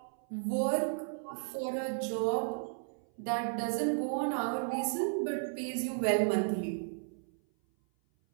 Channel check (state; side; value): silent; left; 55 dB below the other